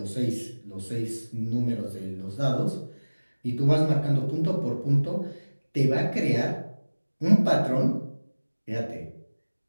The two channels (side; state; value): both; inverted; correlation -1.00